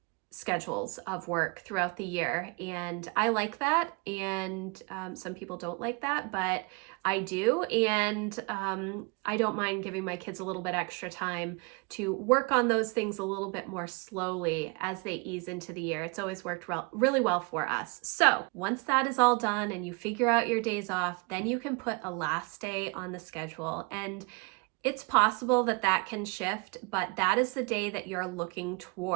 schedules of work throughout the year, and I like that, and some people don't like that, but I do, and I don't mind giving my kids a little bit extra time to work on those things a little bit more slowly as they ease into the year. It's always worked really well for us. So once that is all done and you figure out your days off, then you can put a last day on the schedule, and it's possible that that can shift, but that is the day that you're looking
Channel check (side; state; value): left; quieter; 30.1 dB